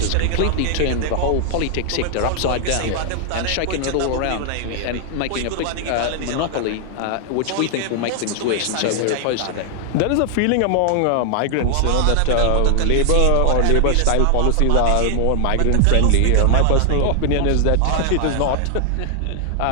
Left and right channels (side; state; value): both; different; correlation 0.00